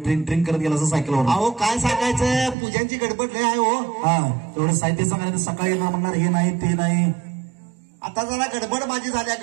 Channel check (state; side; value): drops out; left; at 2.6 s